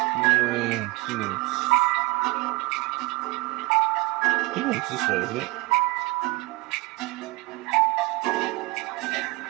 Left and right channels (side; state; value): left; quieter; 22.6 dB